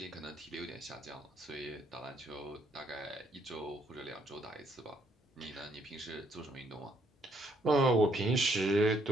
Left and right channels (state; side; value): normal; both; correlation 0.70